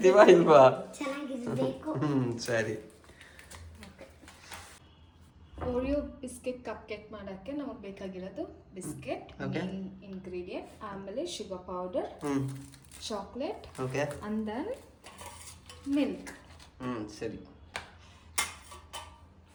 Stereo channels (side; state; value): both; identical; correlation 1.00